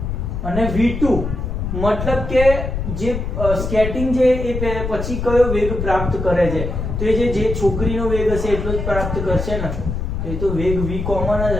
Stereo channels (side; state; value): left; noise; rumble, 4 dB below the sound